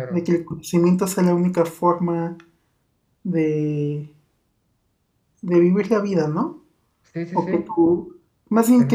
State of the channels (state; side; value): identical; both; correlation 1.00